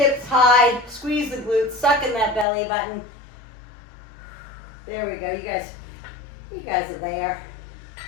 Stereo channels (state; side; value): drops out; right; at 2.5 s